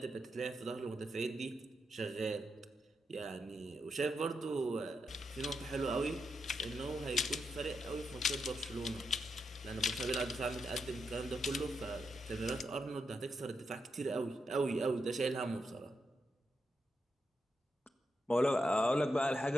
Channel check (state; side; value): normal; both; correlation 0.84